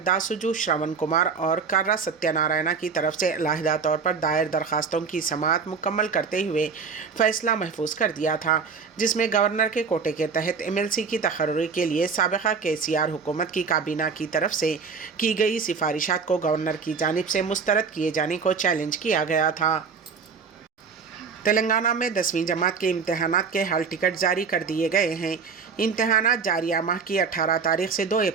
दासुजू श्रवण कुमार और कर्रा सत्यनारायणा की तरफ से अलहदा तौर पर दायर दरखास्तों की समाअत मुकम्मल करते हुए फैसला महफूज कर दिया था, जिसमें गवर्नर के कोटे के तहत MLC की तकर्री के लिए साबिक़ा KCR हुकूमत की काबीना की तरफ से की गई सिफारिशात को गवर्नर की जानिब से मुस्तरद किए जाने को चैलेंज किया गया था। तेलंगाना में 10वीं जमात के इम्तहानात के हाल टिकट जारी कर दिए गए हैं। इम्तहानात जारिया माह की 18 तारीख से 2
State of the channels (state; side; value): quieter; left; 5.5 dB